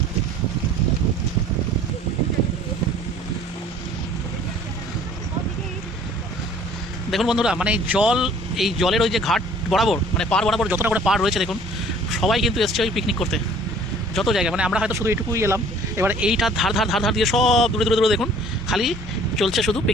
দেখুন বন্ধুরা, মানে জল, এই জলের ওই যে ঘাট বরাবর, মানে পার বরাবর যতটা করে পার রয়েছে, দেখুন সবাই কিন্তু এসছে ওই পিকনিক করতে। যত জায়গায়, মানে আমরা হয়তো শুধু এইটুকুই এলাম, এবার এইটার ধার ধার ধার ধার দিয়ে সব দূরে দূরে দূরে দেখুন খালি চলছে শুধু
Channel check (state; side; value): normal; both; correlation 0.52